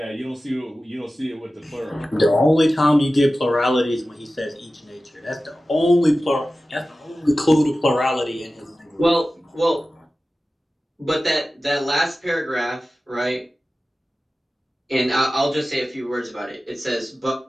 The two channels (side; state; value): both; normal; correlation 0.95